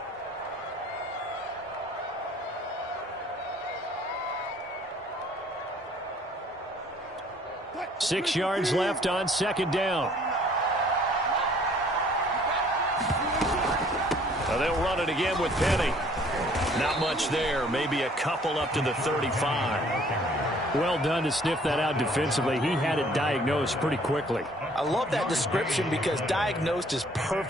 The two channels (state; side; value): normal; both; correlation 0.58